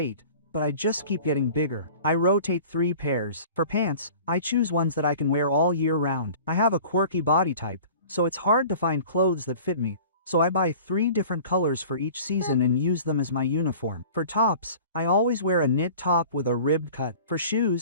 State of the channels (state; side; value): inverted; both; correlation -0.44